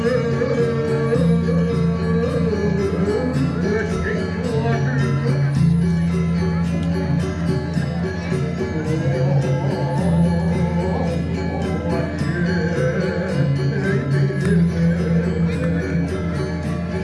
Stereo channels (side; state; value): both; identical; correlation 1.00